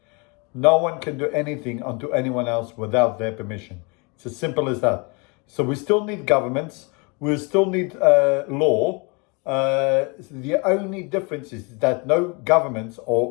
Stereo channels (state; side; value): quieter; right; 31.3 dB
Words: no one can do anything unto anyone else without their permission. It's as simple as that. So we still need governments, we still need law. The only difference is that no government